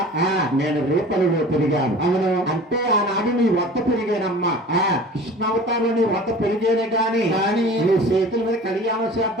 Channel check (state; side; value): normal; both; correlation 0.42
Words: నేను రేపల్లిలో పెరిగాను. అవును, అంటే ఆనాడు నీ వద్ద పెరిగానమ్మా. కృష్ణావతారంలో నీ వద్ద పెరిగేనే గాని నీ చేతుల మీద కళ్యాణం